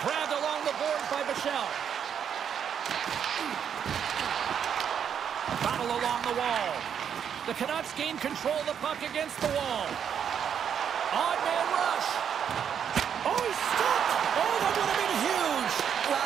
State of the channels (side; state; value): left; quieter; 8.1 dB